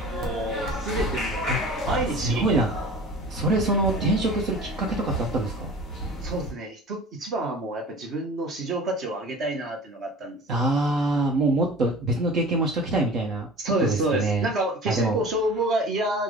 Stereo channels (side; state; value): both; normal; correlation 0.41